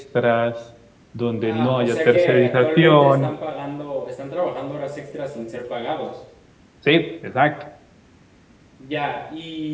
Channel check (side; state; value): both; identical; correlation 1.00